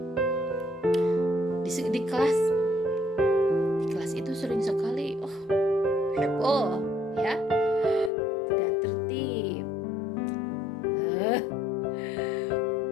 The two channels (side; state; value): right; drops out; at 8.1 s